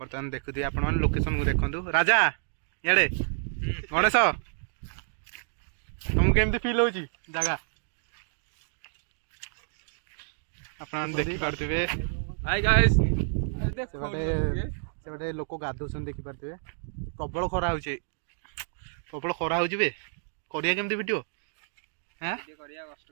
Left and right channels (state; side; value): silent; left; digital silence